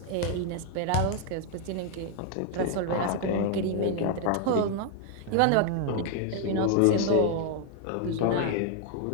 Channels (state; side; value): different; both; correlation 0.00